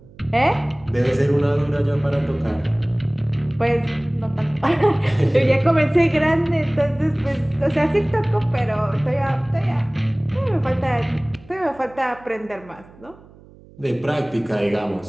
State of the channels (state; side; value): noise; right; hum, 24 dB below the sound